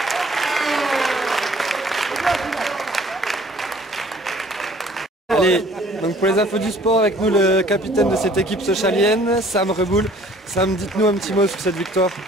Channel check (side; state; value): both; normal; correlation 0.55